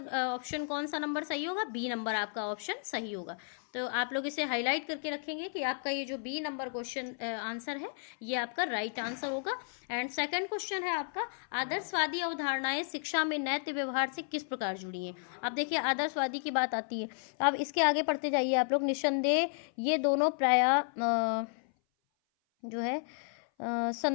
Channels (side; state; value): right; silent; 56 dB below the other